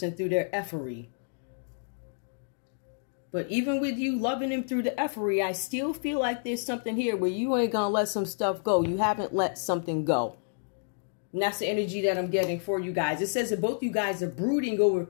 through their effery. But even with you loving him through the effery, I still feel like there's something here where you ain't gonna let some stuff go. You haven't let something go. And that's the energy that I'm getting for you guys. It says that both you guys are brooding over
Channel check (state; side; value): silent; right; digital silence